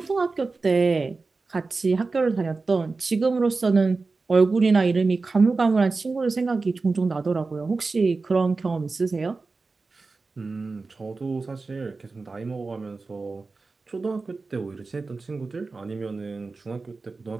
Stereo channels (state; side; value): quieter; left; 3.9 dB